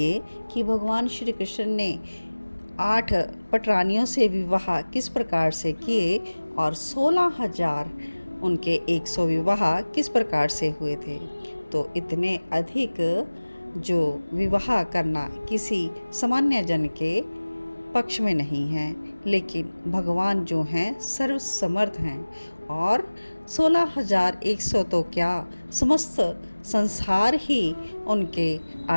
कि भगवान श्री कृष्ण ने 8 पटरानियों से विवाह किस प्रकार से किए और 16,000 उनके 100 विवाह किस प्रकार से हुए थे। तो इतने अधिक जो विवाह करना किसी सामान्य जन के पक्ष में नहीं है, लेकिन भगवान जो हैं सर्वसमर्थ हैं और 16,100 तो क्या, समस्त संसार ही उनके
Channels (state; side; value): inverted; both; correlation -1.00